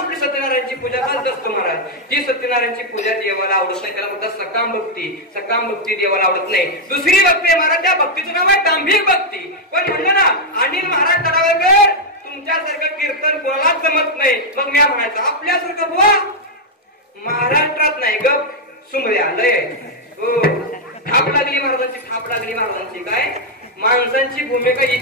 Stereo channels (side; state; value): both; normal; correlation -0.02